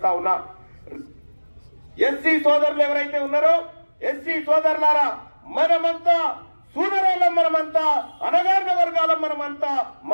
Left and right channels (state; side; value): inverted; both; correlation -1.00